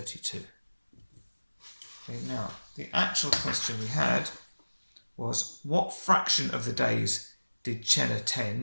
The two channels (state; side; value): inverted; both; correlation -1.00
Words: Okay, now the actual question we had was, what fraction of the days did Chen